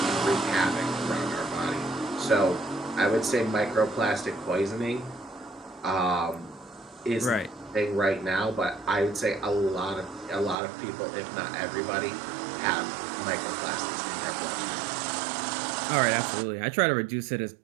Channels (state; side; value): drops out; left; at 10.6 s